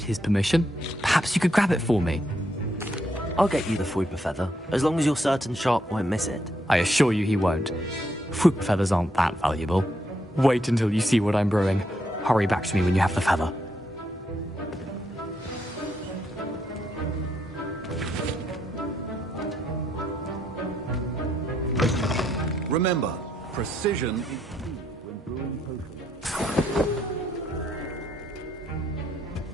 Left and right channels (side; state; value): both; normal; correlation 0.76